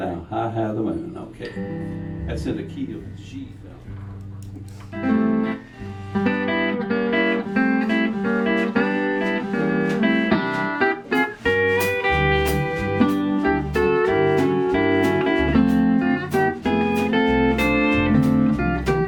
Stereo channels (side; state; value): both; identical; correlation 1.00